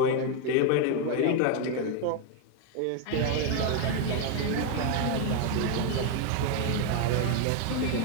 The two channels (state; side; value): different; both; correlation 0.01